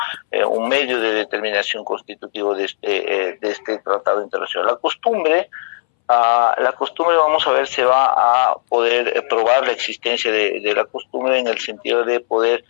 Un medio de determinación constitutivo de este tratado internacional. La costumbre, vamos a ver, se va a poder probar la existencia de la costumbre en el sentido de poder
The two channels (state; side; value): silent; right; 64 dB below the other